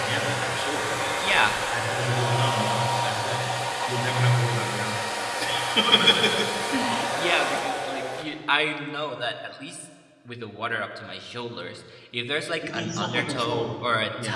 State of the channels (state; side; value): identical; both; correlation 1.00